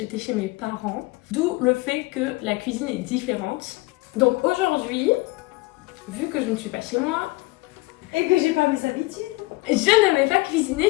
chez mes parents, d'où le fait que la cuisine est différente. Donc aujourd'hui, vu que je ne suis pas chez moi, et que j'ai pas mes habitudes, je ne vais pas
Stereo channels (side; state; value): right; quieter; 22.7 dB